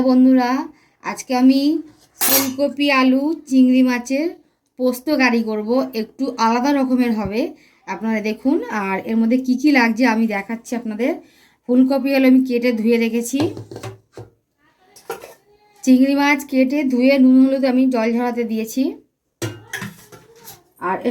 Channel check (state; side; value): identical; both; correlation 1.00